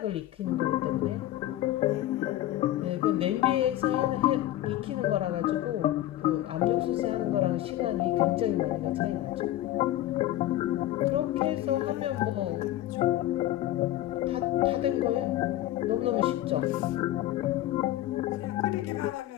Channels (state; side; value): quieter; right; 14.1 dB